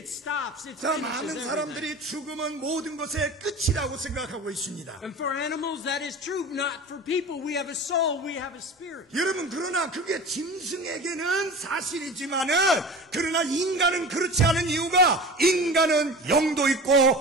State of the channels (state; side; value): normal; both; correlation 0.35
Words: stops. It 자, finishes 많은 everything. 사람들이 죽음은 모든 것의 끝이라고 생각하고 있습니다. And for animals that is true. Not for people. We have a soul. We have a spirit. 여러분, 그러나 그게 짐승에게는 사실이지만은 그러나 인간은 그렇지 않은 이유가 인간은 영도 있고